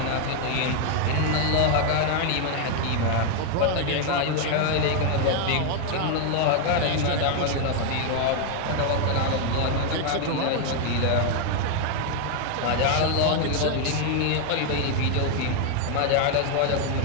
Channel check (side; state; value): both; different; correlation 0.01